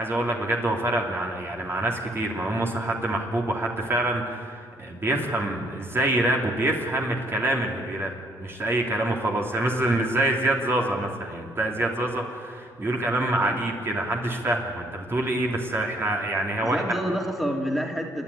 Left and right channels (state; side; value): normal; both; correlation 0.66